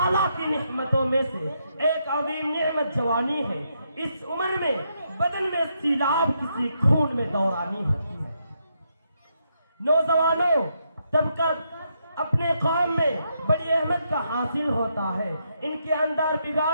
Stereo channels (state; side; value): inverted; both; correlation -0.79